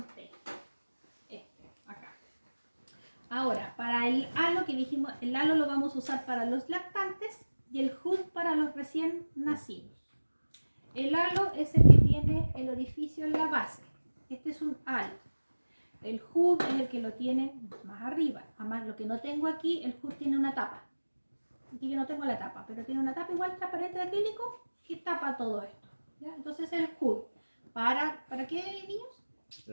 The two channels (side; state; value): both; inverted; correlation -1.00